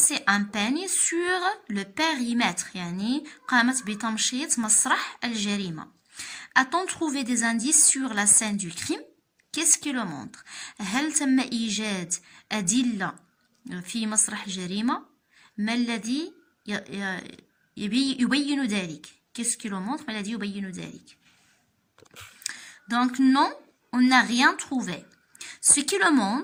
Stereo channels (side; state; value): both; identical; correlation 1.00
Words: un peigne sur le périmètre، يعني قامت بتمشيط مسرح الجريمة. A-t-on trouvé des indices sur la scène du crime؟ Qu'est-ce qui le montre؟ هل تم إيجاد أدلة في مسرح الجريمة؟ ما الذي يبين ذلك؟ Qu'est-ce qui le montre؟ ما الذي يبين ذلك؟ Donc non, on n'a rien trouvé. Ce qui le